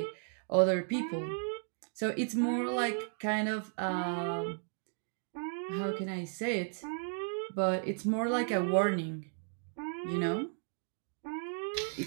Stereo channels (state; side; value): silent; left; 55 dB below the other